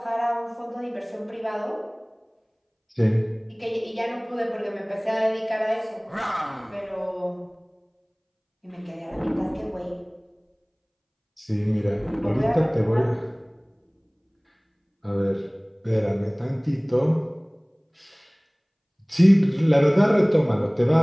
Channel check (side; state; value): both; identical; correlation 1.00